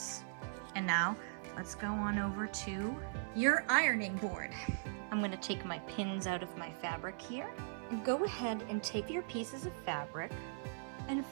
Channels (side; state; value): left; silent; 51 dB below the other